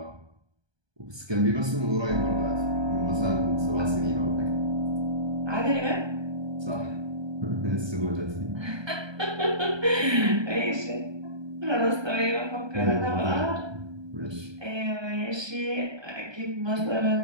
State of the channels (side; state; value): left; late; 1.2 ms